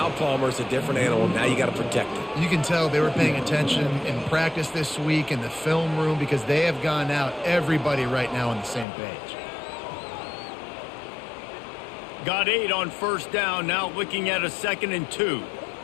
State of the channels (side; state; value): right; drops out; at 8.8 s